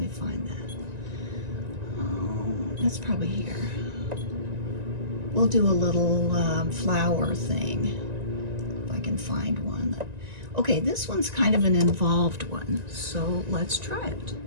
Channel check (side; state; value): left; late; 1.9 ms